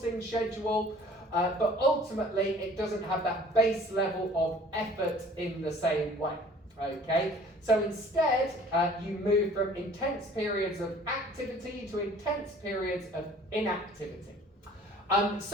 schedule, but ultimately it doesn't have that base level of effort in the same way. Okay, so instead you move from intense periods of activity to intense periods of inactivity.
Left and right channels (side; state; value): both; normal; correlation 0.50